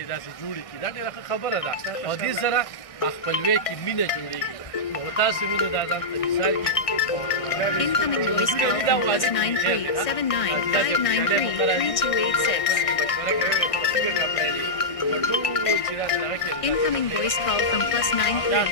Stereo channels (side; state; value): right; late; 1.6 ms